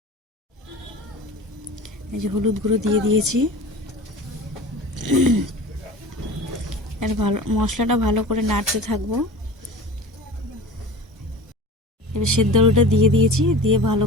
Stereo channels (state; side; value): normal; both; correlation 0.37